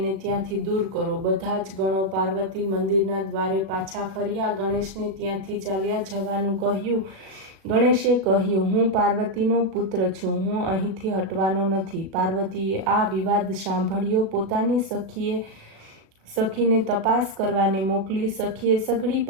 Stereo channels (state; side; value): late; left; 36 ms